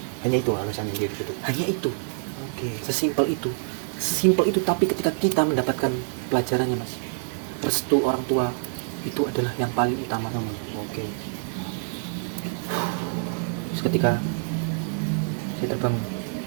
Hanya itu alasannya dia gitu. Hanya itu, Oke. sesimpel itu. Tapi ketika kita mendapatkan pelajarannya mas, restu orang tua itu adalah yang paling utama. Oke. Terus ketika saya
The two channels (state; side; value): silent; left; digital silence